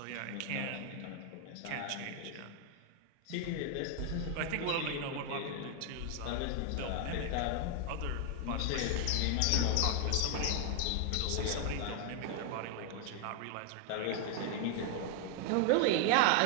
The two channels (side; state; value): both; different; correlation 0.00